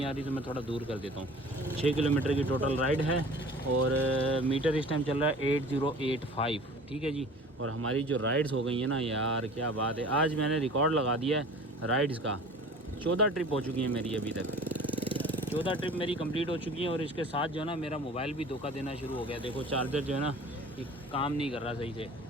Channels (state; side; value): normal; both; correlation 0.44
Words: आ रही तो मैं थोड़ा दूर कर देता हूँ। 6 किलोमीटर की टोटल राइड है और मीटर इस टाइम चल रहा है 8085। ठीक है जी। और हमारी जो राइड्स हो गई हैं ना यार, क्या बात है। आज मैंने रिकॉर्ड लगा दिया है राइड्स का। 14 ट्रिप हो चुकी हैं मेरी अभी तक। 14 ट्रिप मेरी कंप्लीट हो चुकी हैं और इसके साथ जो है ना मेरा मोबाइल भी धोखा देना शुरू हो गया। देखो चार्जर जो है ना ये काम नहीं कर रहा सही से।